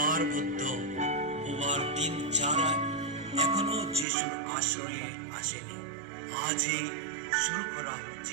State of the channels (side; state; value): left; drops out; at 4.0 s